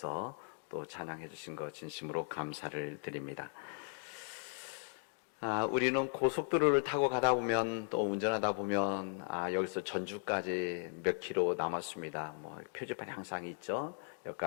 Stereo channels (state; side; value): silent; right; 53 dB below the other